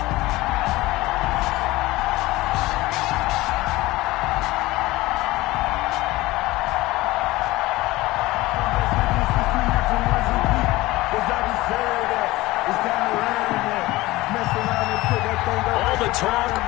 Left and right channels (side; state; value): right; quieter; 19.1 dB